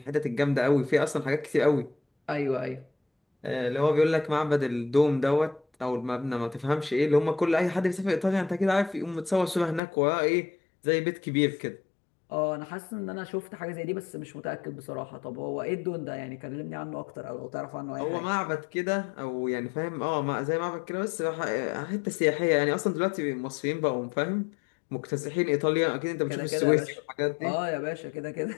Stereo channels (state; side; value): drops out; right; at 9.8 s